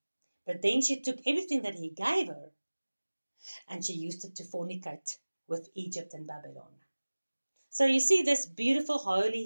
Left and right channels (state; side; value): inverted; both; correlation -1.00